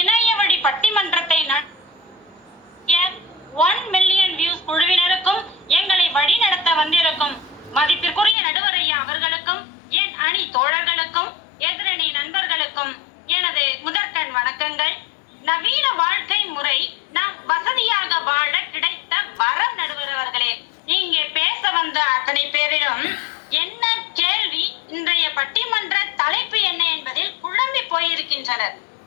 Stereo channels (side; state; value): right; drops out; at 8.3 s